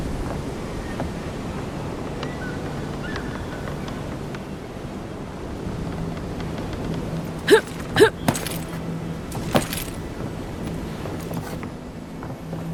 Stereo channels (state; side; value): identical; both; correlation 1.00